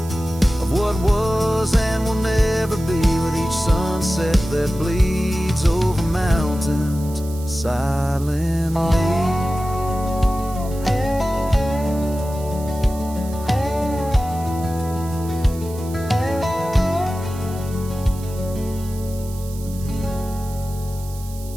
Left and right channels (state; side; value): noise; right; hiss, 18 dB below the sound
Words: of what was and will never be, with each sunset that bleeds over mountains silently.